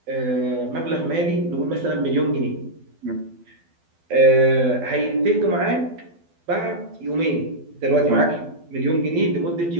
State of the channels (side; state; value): left; late; 12 ms